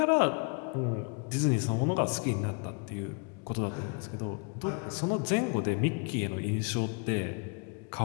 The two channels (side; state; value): right; quieter; 35.8 dB